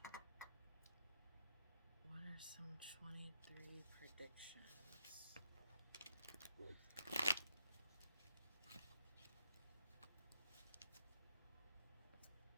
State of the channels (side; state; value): both; inverted; correlation -0.80